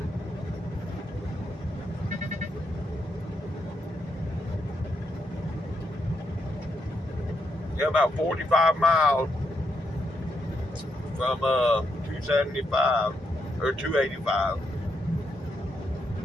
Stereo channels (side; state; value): both; normal; correlation 0.80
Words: Yeah, about 45 miles from 275 or 285.